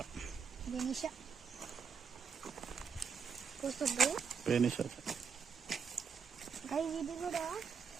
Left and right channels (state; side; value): quieter; left; 6.3 dB